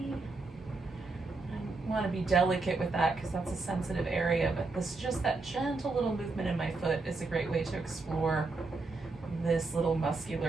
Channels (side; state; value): left; quieter; 3.7 dB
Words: I want to be delicate with that because that's a sensitive area, but this just that gentle little movement in my foot is a great way to explore this little